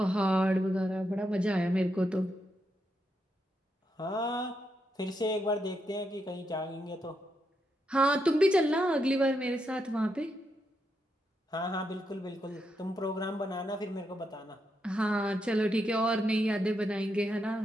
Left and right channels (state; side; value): normal; both; correlation 0.82